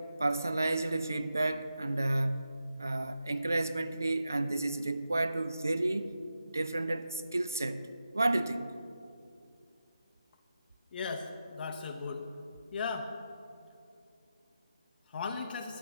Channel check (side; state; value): both; inverted; correlation -0.89